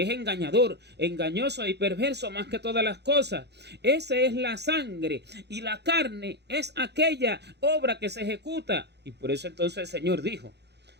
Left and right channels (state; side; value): late; left; 0.49 ms